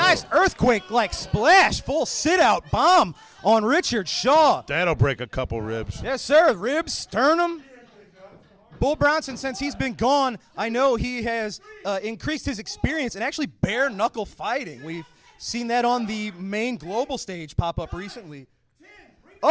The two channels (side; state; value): both; identical; correlation 1.00